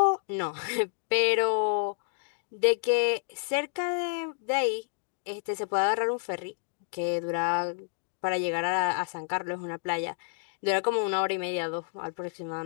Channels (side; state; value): right; silent; 58 dB below the other